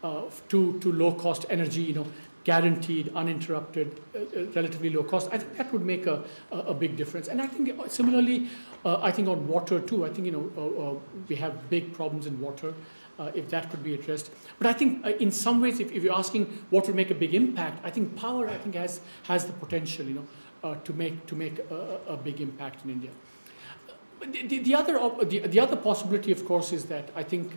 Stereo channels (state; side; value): inverted; both; correlation -1.00